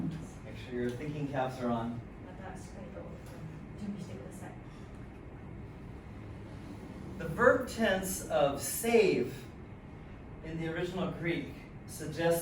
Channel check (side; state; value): both; identical; correlation 1.00